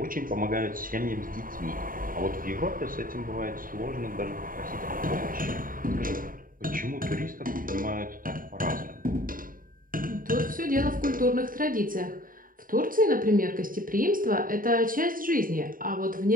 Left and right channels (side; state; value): left; late; 0.41 ms